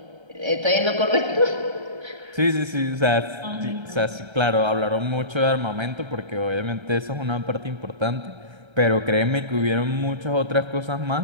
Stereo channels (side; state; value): left; late; 1.3 ms